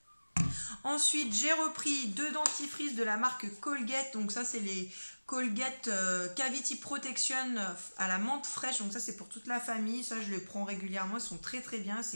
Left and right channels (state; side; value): inverted; both; correlation -1.00